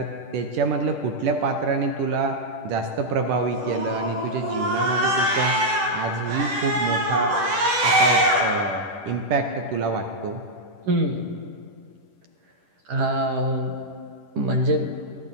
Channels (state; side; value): late; left; 10 ms